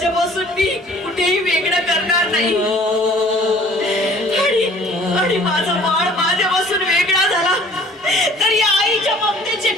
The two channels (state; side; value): normal; both; correlation 0.52